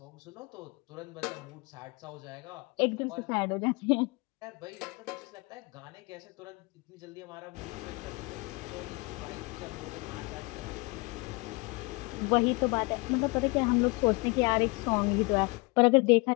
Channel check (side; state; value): right; quieter; 27.2 dB